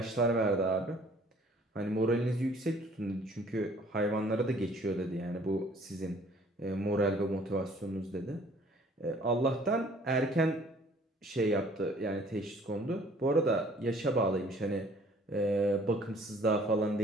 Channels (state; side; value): normal; both; correlation 0.56